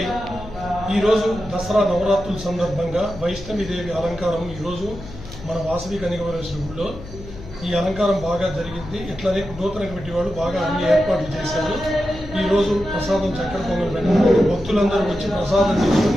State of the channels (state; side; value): noise; left; hum, 14 dB below the sound